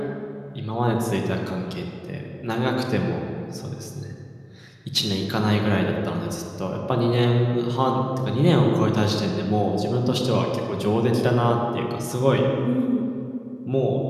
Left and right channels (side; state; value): both; identical; correlation 1.00